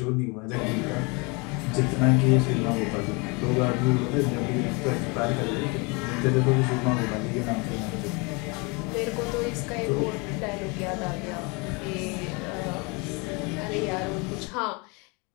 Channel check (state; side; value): quieter; right; 29.5 dB